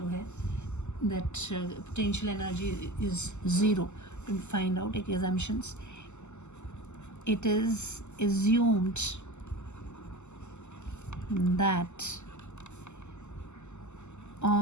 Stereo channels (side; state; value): right; late; 0.83 ms